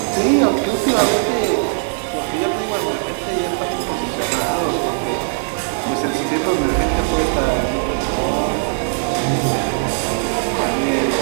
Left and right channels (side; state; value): left; silent; 58 dB below the other